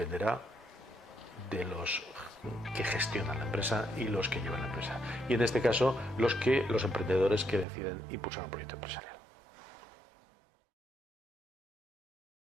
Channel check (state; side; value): drops out; left; at 7.7 s